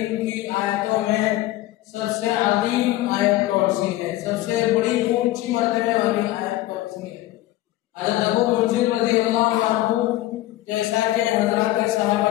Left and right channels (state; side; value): quieter; right; 15.9 dB